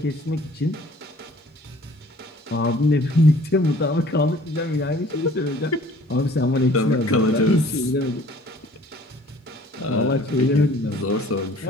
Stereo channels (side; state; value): both; normal; correlation 0.53